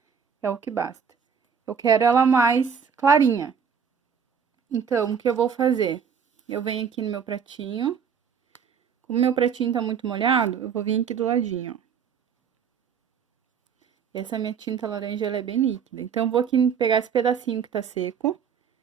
é o que basta. Eu quero ela mais clarinha. Então, o que eu vou fazer? Eu venho aqui no meu pratinho. Como meu pratinho tá muito molhado, eu vou vir aqui do ladinho, ó. Essa minha tinta laranja, ela é bem líquida. Então, eu vou aqui pegar esse pedacinho que tá seco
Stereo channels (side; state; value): left; quieter; 6.9 dB